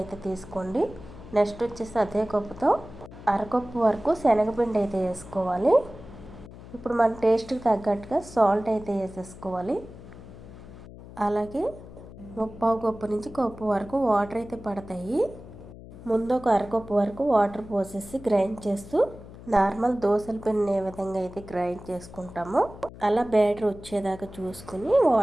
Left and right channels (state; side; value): noise; left; hum, 16 dB below the sound